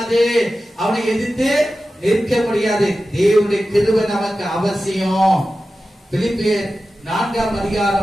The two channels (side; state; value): both; normal; correlation 0.94